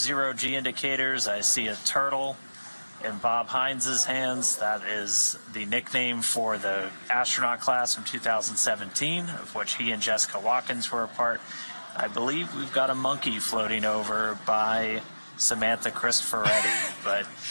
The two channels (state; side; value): inverted; both; correlation -1.00